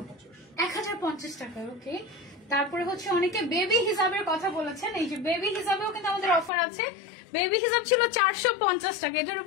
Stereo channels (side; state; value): right; drops out; at 6.5 s